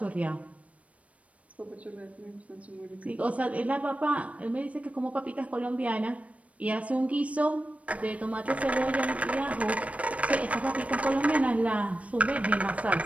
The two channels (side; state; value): left; late; 0.065 ms